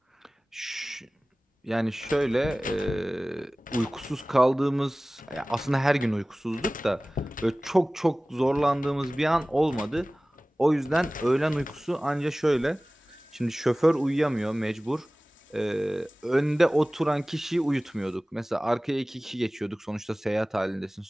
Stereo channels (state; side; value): normal; both; correlation 0.98